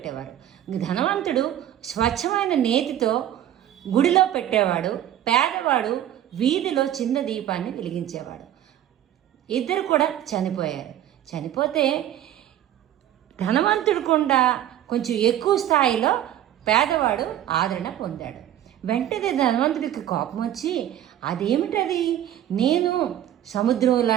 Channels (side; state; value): left; quieter; 11.7 dB